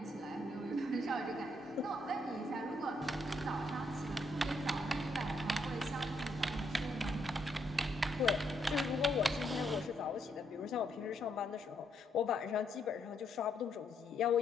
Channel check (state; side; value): normal; both; correlation 0.75